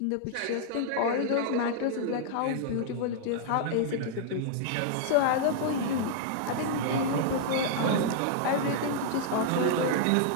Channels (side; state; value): both; different; correlation -0.01